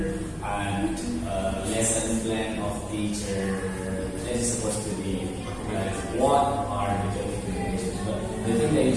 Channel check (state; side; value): identical; both; correlation 1.00